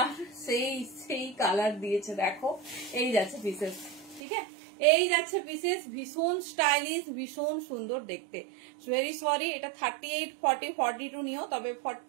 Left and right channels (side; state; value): left; drops out; at 4.2 s